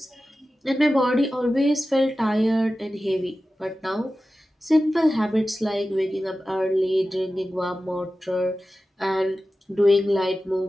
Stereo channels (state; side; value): normal; both; correlation 0.94